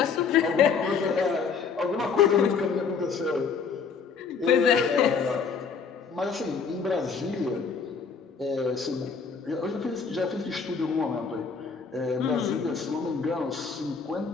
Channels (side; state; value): right; quieter; 5.6 dB